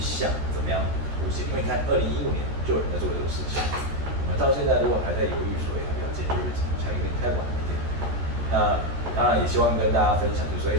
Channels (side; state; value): left; late; 14 ms